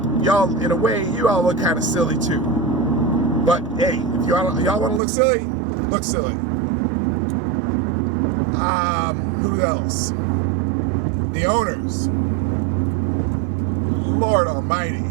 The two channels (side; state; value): left; drops out; at 5.0 s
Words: in a way, you all look kind of silly too. But hey, if y'all want to look silly, look silly. Who else? The owners. Lord Almighty.